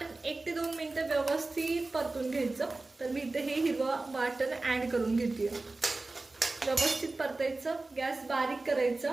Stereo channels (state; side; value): quieter; left; 3.3 dB